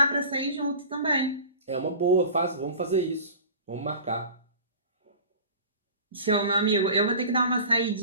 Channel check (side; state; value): both; inverted; correlation -0.39